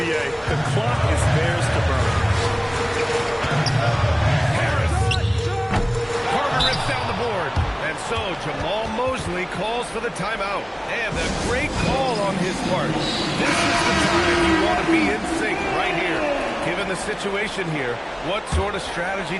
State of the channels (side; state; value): both; identical; correlation 1.00